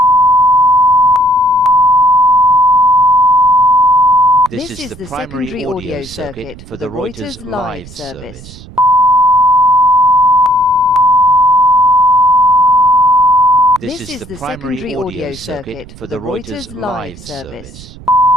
This is the primary audio circuit for the Reuters live service. This is the primary audio circuit for the Reuters live service.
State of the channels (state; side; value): noise; right; rumble, 19 dB below the sound